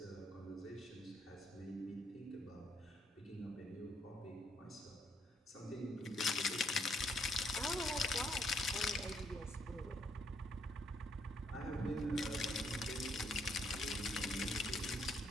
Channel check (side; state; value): both; normal; correlation 0.71